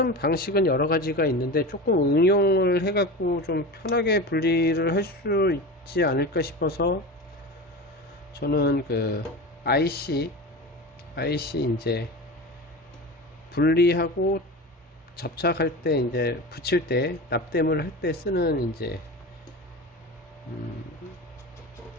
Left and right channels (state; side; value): normal; both; correlation 0.28